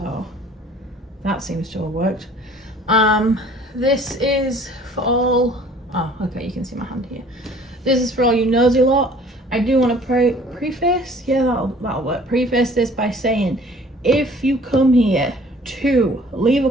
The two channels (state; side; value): normal; both; correlation 0.52